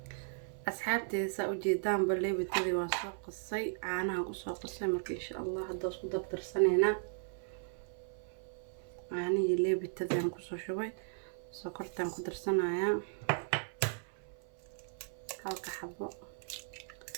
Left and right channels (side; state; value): left; silent; 53 dB below the other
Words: asxaabteyda sa u jeedaan leebitadii waa soo qasay caanaha ku soo qasay marka insha Allah hadda isku dabtarsanayna caanihi leebitadii aan ku soo shubay sokortaan ku darsanaya halka xabo